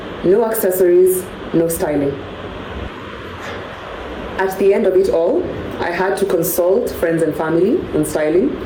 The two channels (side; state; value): both; identical; correlation 1.00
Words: no accessories, no styling. At the end of it all, I had to consult friends and family on styling,